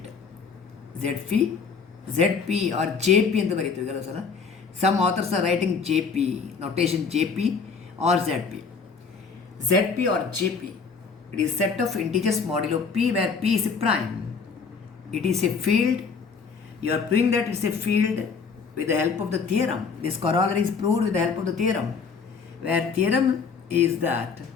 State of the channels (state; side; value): quieter; right; 5.4 dB